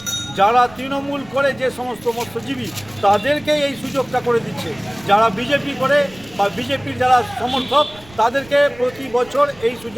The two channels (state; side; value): noise; right; rumble, 23 dB below the sound